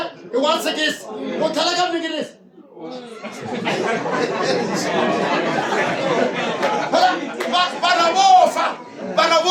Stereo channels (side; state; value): both; identical; correlation 1.00